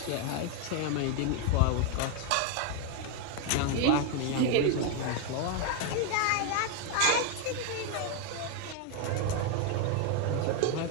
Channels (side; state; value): both; different; correlation 0.01